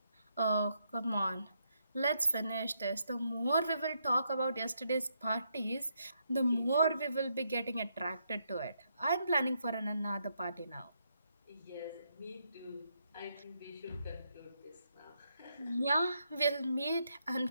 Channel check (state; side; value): inverted; both; correlation -0.78